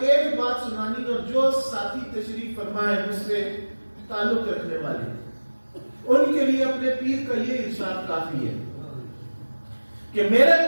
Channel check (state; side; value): inverted; both; correlation -1.00